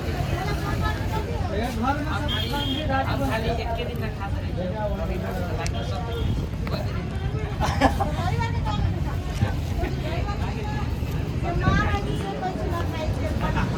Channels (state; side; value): identical; both; correlation 1.00